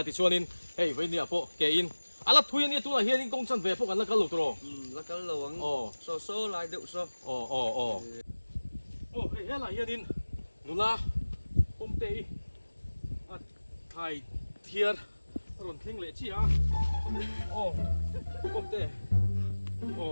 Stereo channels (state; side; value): inverted; both; correlation -1.00